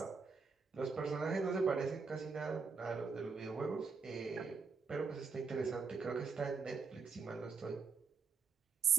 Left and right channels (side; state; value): left; quieter; 5.0 dB